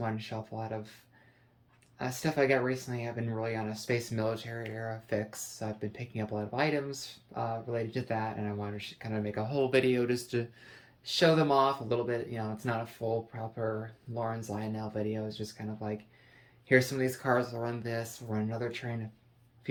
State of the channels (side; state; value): both; identical; correlation 1.00